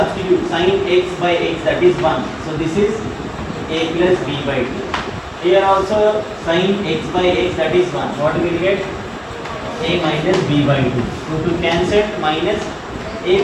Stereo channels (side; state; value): both; identical; correlation 1.00